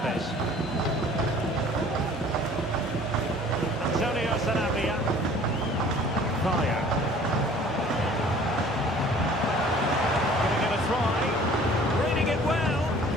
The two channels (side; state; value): both; normal; correlation 0.50